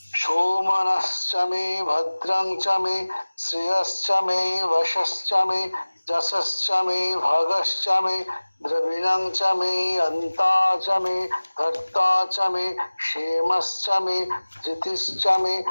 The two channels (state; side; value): inverted; both; correlation -1.00